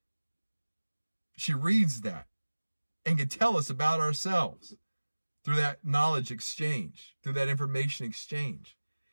she reads that and can tell us about ourselves through that knowledge exchange, through that information exchange,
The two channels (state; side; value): inverted; both; correlation -1.00